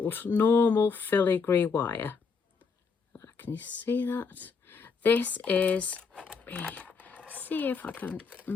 normal filigree wire. Can you see that? This is, see if I can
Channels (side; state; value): right; quieter; 5.2 dB